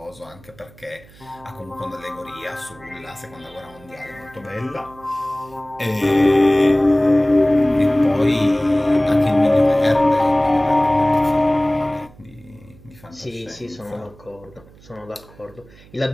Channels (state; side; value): noise; right; hum, 24 dB below the sound